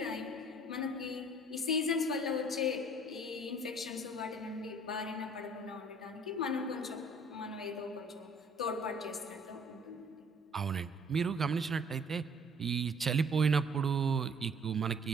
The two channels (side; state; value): both; normal; correlation 0.56